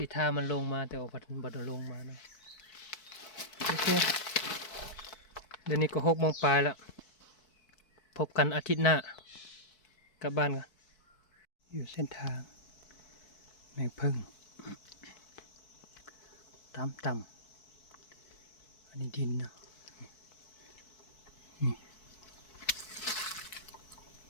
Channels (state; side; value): late; right; 4.6 ms